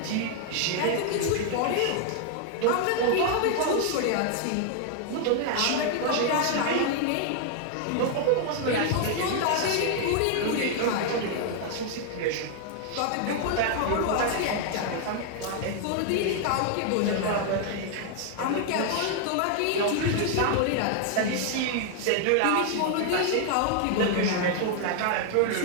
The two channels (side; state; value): both; different; correlation 0.00